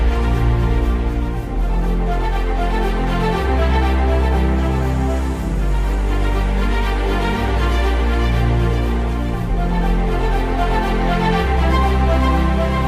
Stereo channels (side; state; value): both; identical; correlation 1.00